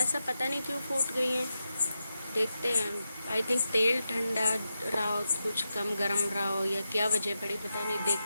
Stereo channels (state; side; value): inverted; both; correlation -0.89